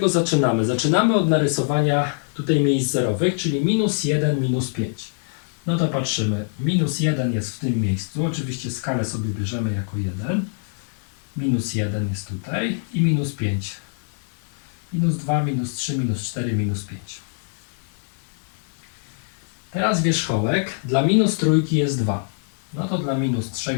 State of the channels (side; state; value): right; silent; 63 dB below the other